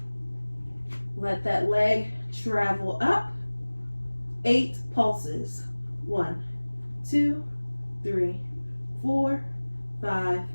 Let that leg travel up. 8 pulses. 1, 2, 3, 4, 5,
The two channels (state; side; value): inverted; both; correlation -1.00